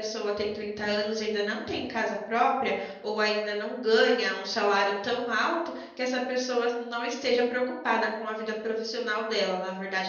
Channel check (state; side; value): identical; both; correlation 1.00